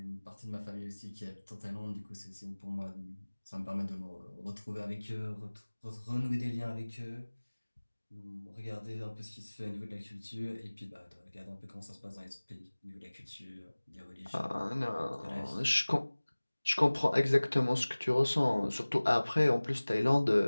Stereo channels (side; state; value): both; inverted; correlation -1.00